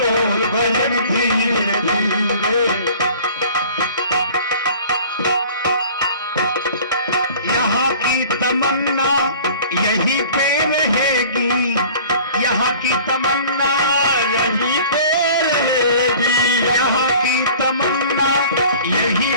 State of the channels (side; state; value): both; inverted; correlation -0.46